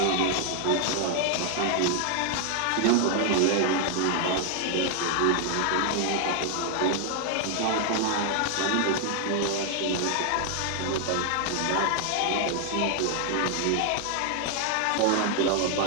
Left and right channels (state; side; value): different; both; correlation 0.00